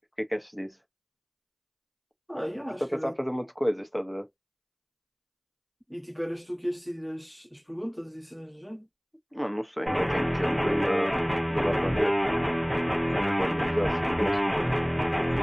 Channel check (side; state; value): both; identical; correlation 1.00